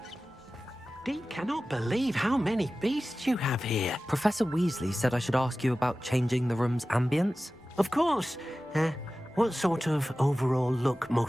Deke cannot believe how many beasts you have here. Professor Weasley said I should ask you about changing the room's ambience. Of course. What sort of overall look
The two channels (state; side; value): normal; both; correlation 0.96